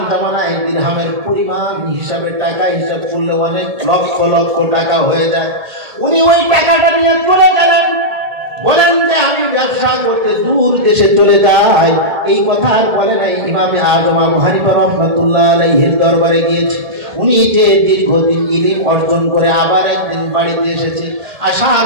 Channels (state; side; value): late; left; 1.7 ms